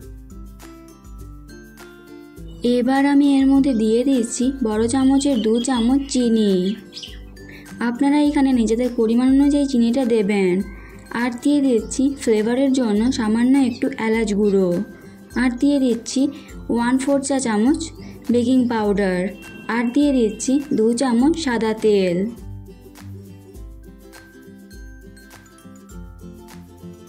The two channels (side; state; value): both; identical; correlation 1.00